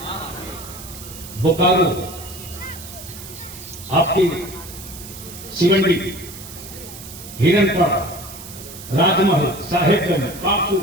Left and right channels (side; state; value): right; noise; hiss, 14 dB below the sound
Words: बोकारो, आपकी सिवंडी, हिरनपाड़ा, राजमहल, साहेबगंज, पाकू,